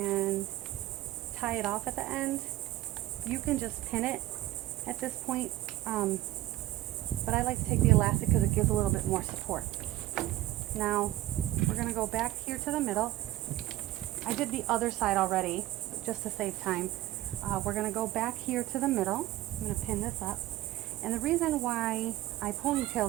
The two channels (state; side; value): quieter; left; 15.4 dB